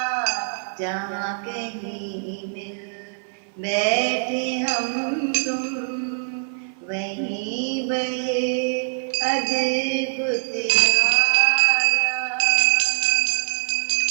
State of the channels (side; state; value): left; silent; 56 dB below the other